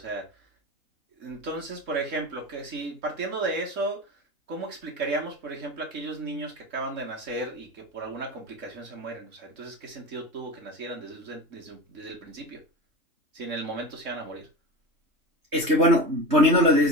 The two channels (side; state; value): left; late; 3.3 ms